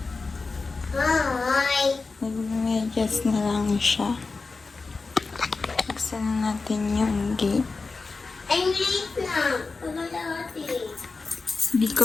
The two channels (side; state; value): right; quieter; 4.1 dB